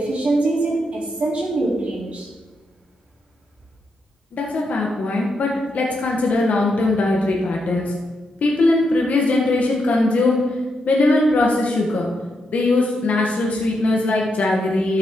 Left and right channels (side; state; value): both; normal; correlation 0.82